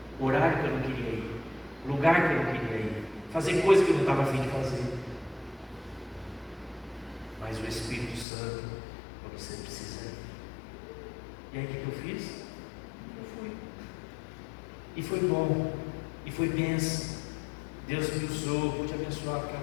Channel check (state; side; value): drops out; right; at 8.2 s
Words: horário que eu não queria ir, lugar que eu não queria ir, fazer coisa que eu não estava afim de fazer, mas o Espírito Santo, quando você precisa ir. E aí o que eu fiz? Eu fui, e foi bom, e foi bênção. Deus me usou, pude abençoar